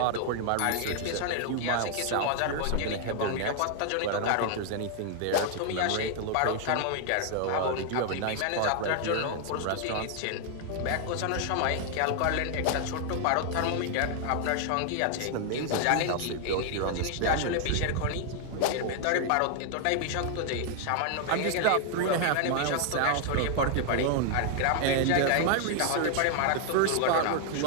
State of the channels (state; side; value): different; both; correlation 0.00